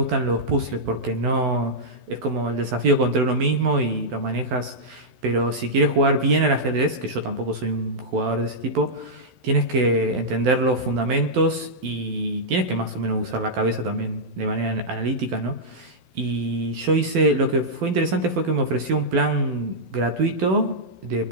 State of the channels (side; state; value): left; late; 12 ms